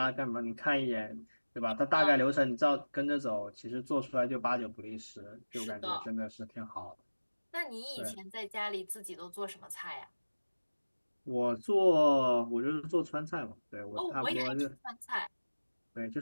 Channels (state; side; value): inverted; both; correlation -1.00